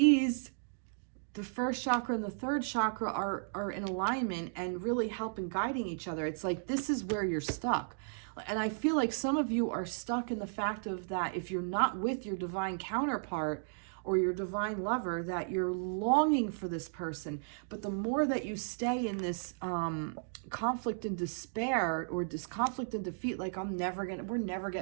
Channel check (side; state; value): left; silent; digital silence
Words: first chakra and the third chakra are in alignment and really helping guiding each other. It's like this is where you're stuck. And I feel like some of you are stuck in the fact of that if you're not with your divine counterpart or your divine lover, that you're longing for this person. But the more that you stay in this conflict and despair, or this conflict and defeat, like we're never